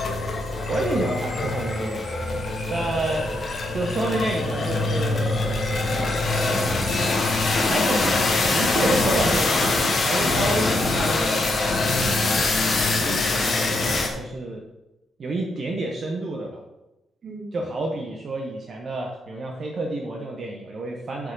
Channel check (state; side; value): normal; both; correlation 0.79